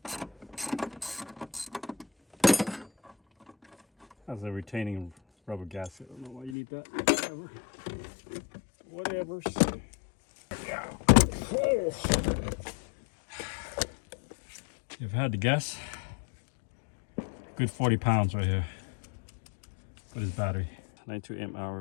Has a retaining rubber gasket. I don't know why you need that. Whatever. Yeah. Oh. If I had to guess, good 40 pounds right here for this battery. 92 amp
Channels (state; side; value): drops out; right; at 6.6 s